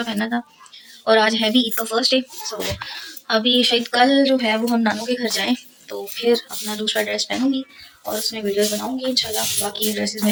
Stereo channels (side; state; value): both; identical; correlation 1.00